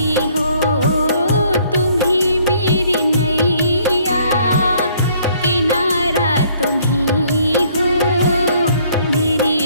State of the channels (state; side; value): inverted; both; correlation -0.62